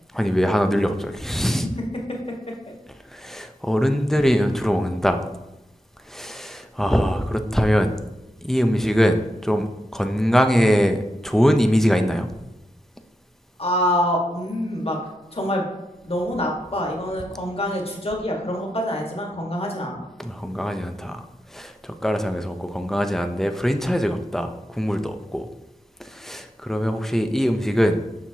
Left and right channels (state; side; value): normal; both; correlation 0.88